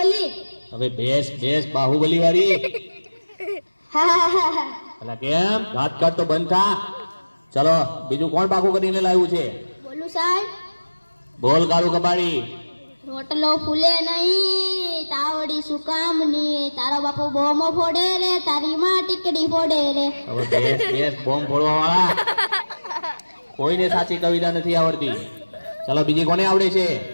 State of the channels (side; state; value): both; inverted; correlation -1.00